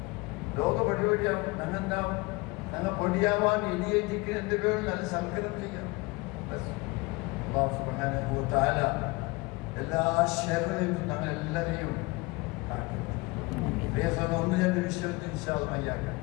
ലോക പടിപടിയാവും. ഞങ്ങെന്താവും? ഞങ്ങൾ പൊടിയാവാൻ ഇനിയേറ്റിക്ക് എന്ത് പേരും നല്ല സൽക്കരം ചെയ്യാം. അല്ലാഹു സുബ്ഹാനഹു വ തആല എല്ലാ ഷർറിലും ഞങ്ങൾ എല്ലാവരെയും ഒന്ന് രണ്ട് വിഷയത്തിൽ ഇൻഷാ അല്ലാഹ് മയ്യാക്കാം.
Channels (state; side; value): quieter; right; 24.7 dB